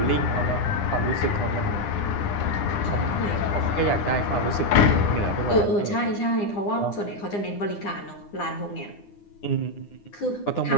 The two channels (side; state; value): right; late; 9.9 ms